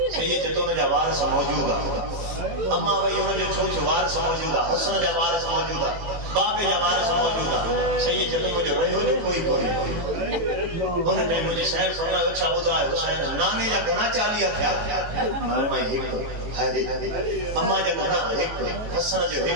صحیح ہے تو ان جا وارث موجود ہے اما وہی ان جو ڇوچو وارث موجود ہے حسن جا وارث موجود ہے بابے جا وارث موجود ہے صحیح ہے تو مجھے رہو جو کوئی ان نے مجھے شہر فرمایا اچھا ٻڌايو حسين نانے جا گنا 40 تھیا میں ایک ہائے اما جا گنا ایک حسن جو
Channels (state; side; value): late; left; 18 ms